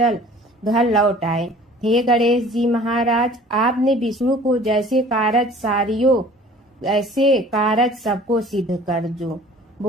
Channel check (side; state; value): both; normal; correlation 0.48